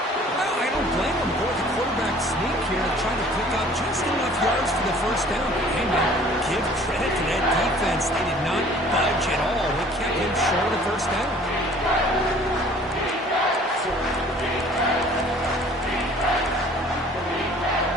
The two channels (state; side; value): normal; both; correlation 0.52